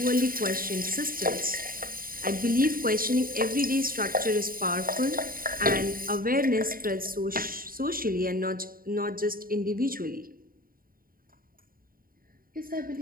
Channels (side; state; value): left; late; 0.41 ms